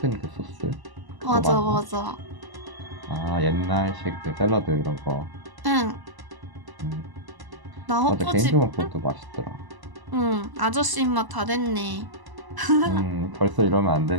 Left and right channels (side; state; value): left; late; 1.0 ms